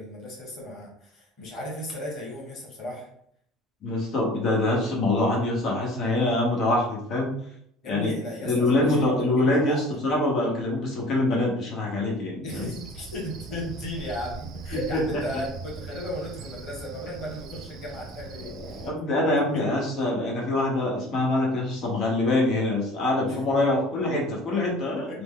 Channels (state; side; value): normal; both; correlation 0.46